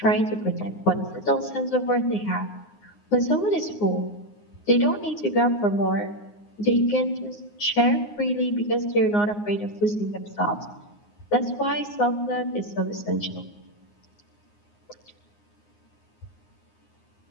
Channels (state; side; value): late; right; 9.7 ms